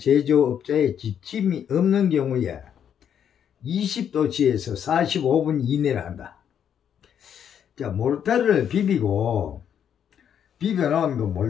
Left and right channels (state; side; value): quieter; right; 8.7 dB